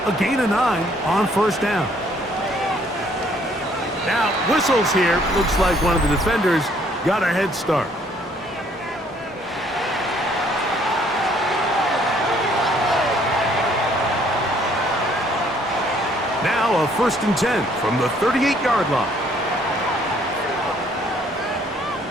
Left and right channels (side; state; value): both; normal; correlation 0.63